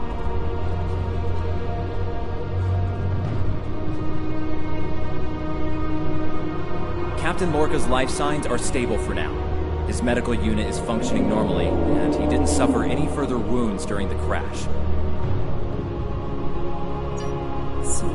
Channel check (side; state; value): both; identical; correlation 1.00